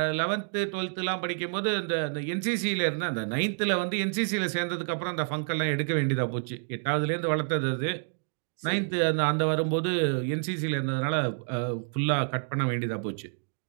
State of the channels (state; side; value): silent; left; 59 dB below the other